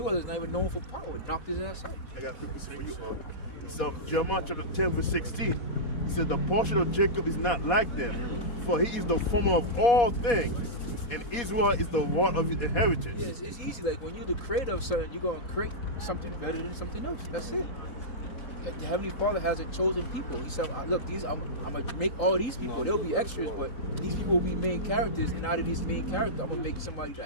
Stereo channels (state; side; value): late; right; 4.2 ms